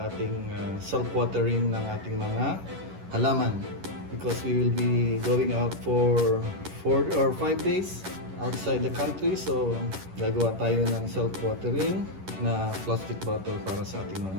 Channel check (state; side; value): late; left; 11 ms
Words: ating self-watering ng ating mga halaman. Because we will be going out for 4 or 5 days outside the country. So gagawa tayo ng self-watering na plastic bottle para sa ating